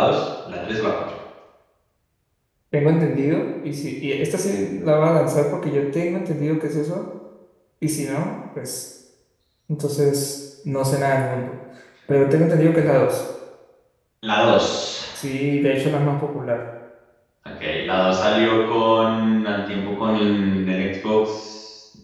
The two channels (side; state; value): both; identical; correlation 1.00